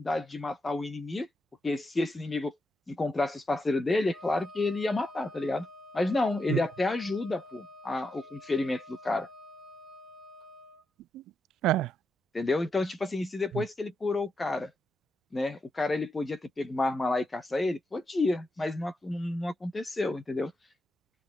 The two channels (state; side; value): normal; both; correlation 0.85